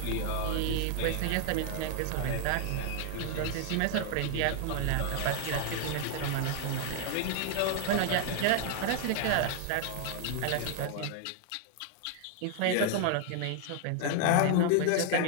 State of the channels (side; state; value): both; different; correlation 0.00